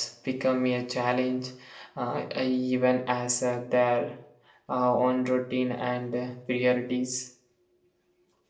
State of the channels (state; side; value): identical; both; correlation 1.00